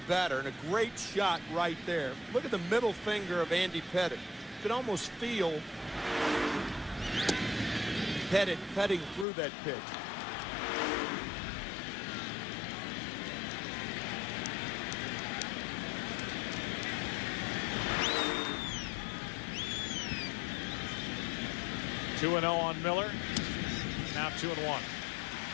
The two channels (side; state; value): right; drops out; at 9.2 s